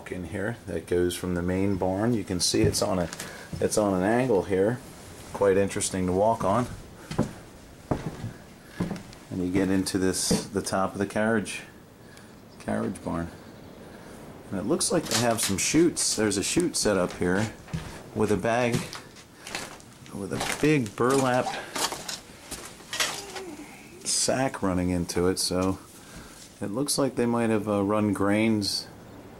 in here that goes from the main barn. You can see it's on an angle here, quite interesting to walk on. And you get into the top of the carriage barn. And it looks like they have some chutes. There's a chute set up here with a bag with a big burlap sack running into it, so it looks like they might have run grains.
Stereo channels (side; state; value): both; identical; correlation 1.00